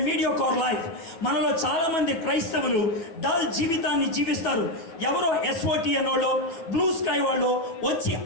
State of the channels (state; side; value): late; right; 9.2 ms